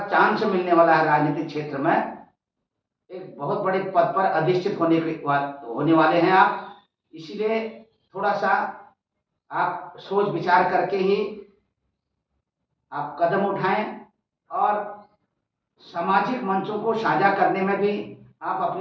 चांस मिलने वाला है राजनीतिक क्षेत्र में। एक बहुत बड़े पद पर अधिष्ठित होने वाले हैं आप। इसीलिए थोड़ा सा आप सोच विचार करके ही आप कदम उठाएं और सामाजिक मंचों को साझा करने में भी आप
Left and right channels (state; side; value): identical; both; correlation 1.00